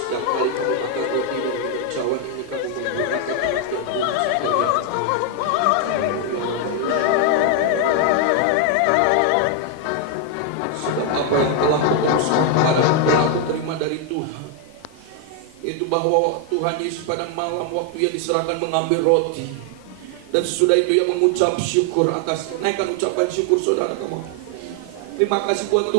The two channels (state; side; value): different; both; correlation 0.01